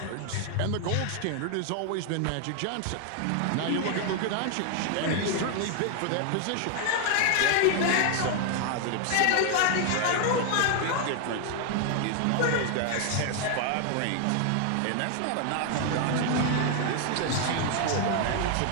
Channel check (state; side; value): different; both; correlation 0.00